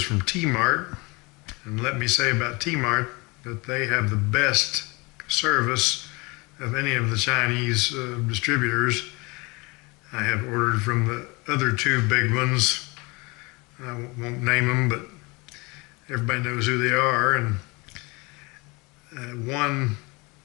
from Tmart. And let me say about Tmart that they have the best service of any of the Chinese distributors. I have ordered from the other two big ones. I won't name them, but everybody knows who they are. And one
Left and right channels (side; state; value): right; quieter; 26.4 dB